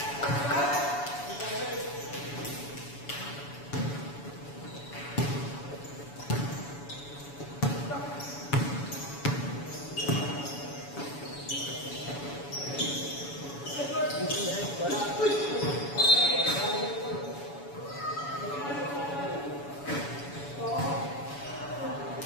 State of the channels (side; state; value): right; late; 7.1 ms